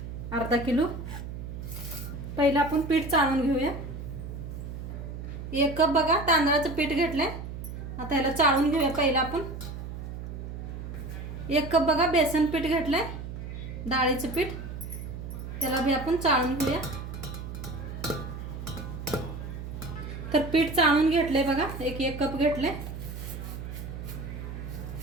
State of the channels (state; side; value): noise; right; hum, 8 dB below the sound